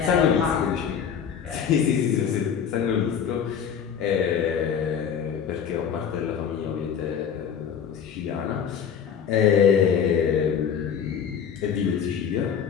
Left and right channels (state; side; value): quieter; right; 7.8 dB